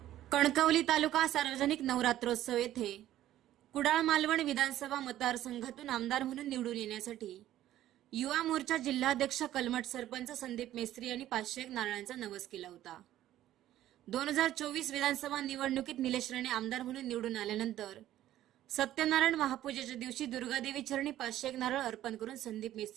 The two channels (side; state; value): left; quieter; 13.2 dB